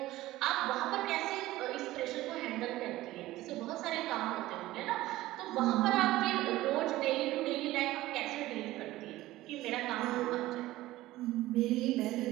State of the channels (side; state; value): left; quieter; 16.7 dB